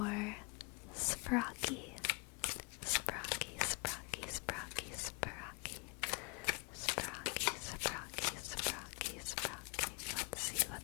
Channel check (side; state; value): right; quieter; 31.3 dB